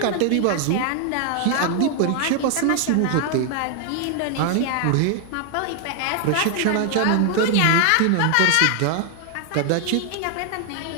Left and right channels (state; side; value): different; both; correlation 0.00